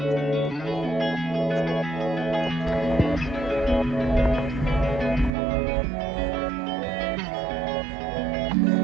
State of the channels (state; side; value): drops out; left; at 5.3 s